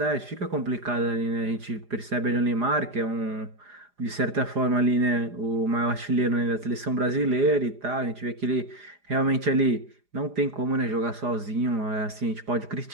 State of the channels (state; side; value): late; left; 4.9 ms